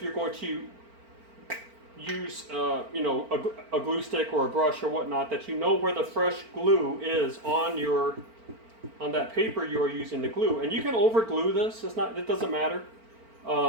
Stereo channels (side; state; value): left; late; 4.4 ms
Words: you're going to use, a glue stick or a brush or whatnot, that you know where the fresh glue is on that paper you are using to glue. And you can over glue this. It doesn't matter.